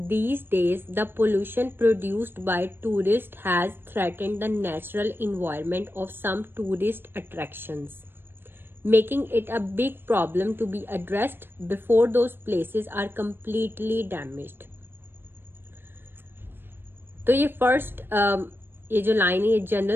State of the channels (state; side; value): late; left; 0.10 ms